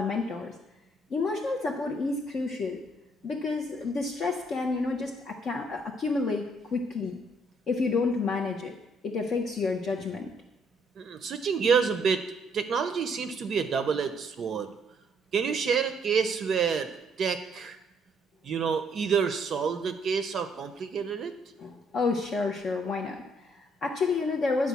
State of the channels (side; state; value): both; normal; correlation 0.68